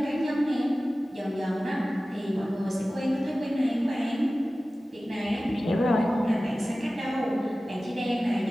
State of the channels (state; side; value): normal; both; correlation 0.96